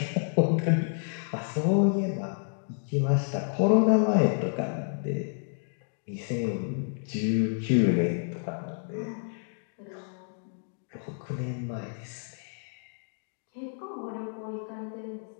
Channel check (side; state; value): right; silent; digital silence